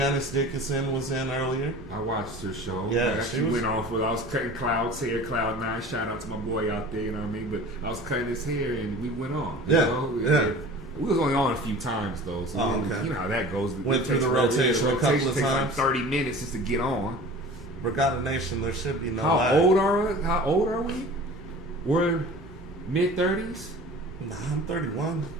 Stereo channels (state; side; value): normal; both; correlation 0.40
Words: Dickinson was in earlier. I watched her show. Yeah, she went off with, I was cutting Cloud's hair, Cloud9. Shout out to my boy out there, you know what I mean? But I was cutting his hair and we went on. You know? We was only on a few times though, so you know how that goes. Went through the rotation a couple of times. Like 30 minutes just to get on. Brigada Nation, there should be no How old are we? We're mid-30s? Nah, I'm 31.